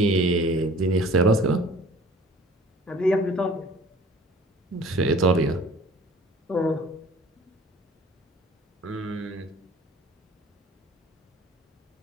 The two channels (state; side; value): normal; both; correlation 0.49